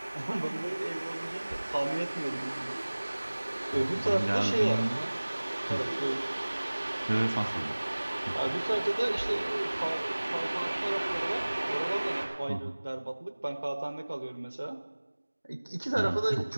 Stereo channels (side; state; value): both; inverted; correlation -1.00